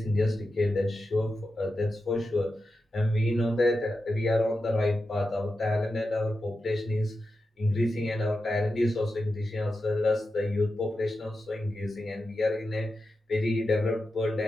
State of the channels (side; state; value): both; normal; correlation 0.90